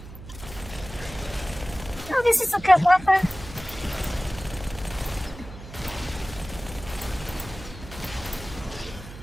Oh, this is a good weapon.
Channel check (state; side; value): noise; right; hum, 14 dB below the sound